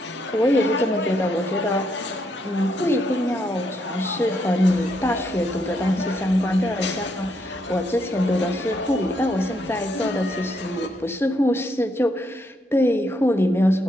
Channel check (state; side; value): normal; both; correlation 0.76